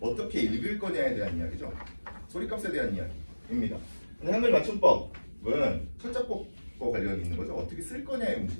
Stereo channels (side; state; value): both; inverted; correlation -1.00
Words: 읽을 거냐에 대한 이야기죠. 소리값에 대한 이야기입니다. 근데 한글 맞춤법은 철자법과 관련이 있는 거죠. 어떻게 쓸 거냐의